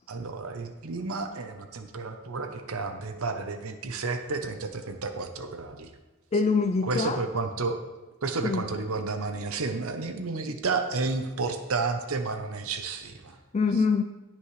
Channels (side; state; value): both; normal; correlation 0.28